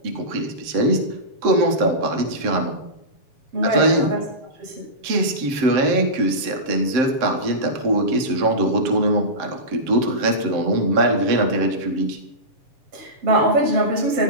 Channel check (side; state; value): left; late; 7.7 ms